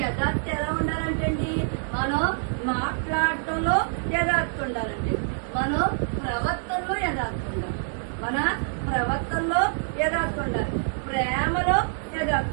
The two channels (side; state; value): left; silent; digital silence